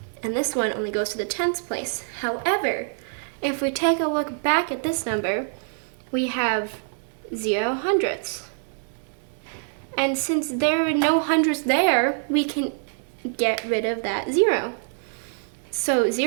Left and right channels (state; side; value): silent; left; digital silence